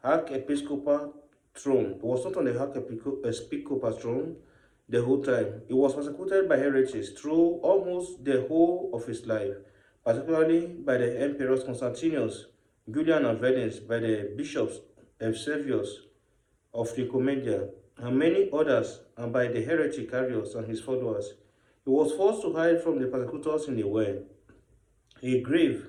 archiepiscopal throne. He was not on the archiepiscopal throne the whole time. He was persecuted by heretics through almost the whole of his life, particularly by the emperors Constantius, Julian and Valens, by the bishops Eusebius of Nicomedia, and many others, and by the heretic Arius and his followers. He was forced to hide from the persecutors in a well, a grave,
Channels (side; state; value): both; identical; correlation 1.00